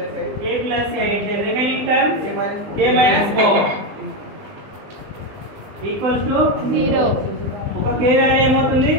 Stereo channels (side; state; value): left; late; 20 ms